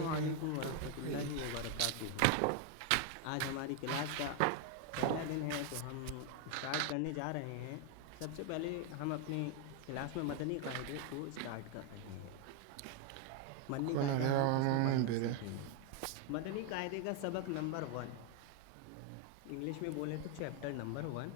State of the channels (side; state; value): both; different; correlation 0.01